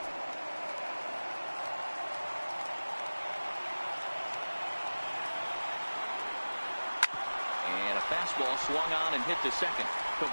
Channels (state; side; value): inverted; both; correlation -1.00